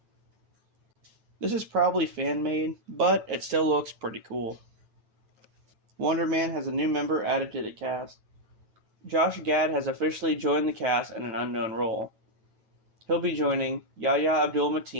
This is probably fan-made, but it still looks pretty cool. Wonder Man has a new member added to the cast. Josh Gad has officially joined the cast in an unknown role. He'll be joining Yahya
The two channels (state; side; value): late; left; 9.1 ms